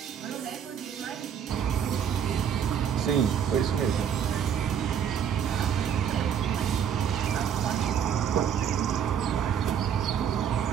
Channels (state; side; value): quieter; left; 8.3 dB